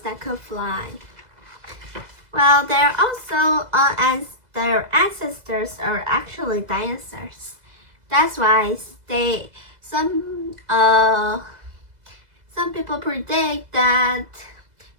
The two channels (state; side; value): late; left; 2.0 ms